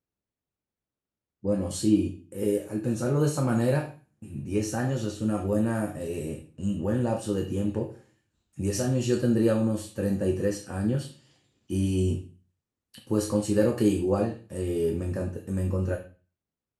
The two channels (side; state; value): both; identical; correlation 1.00